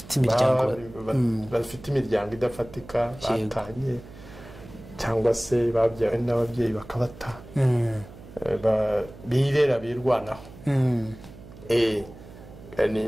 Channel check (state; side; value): noise; right; hum, 18 dB below the sound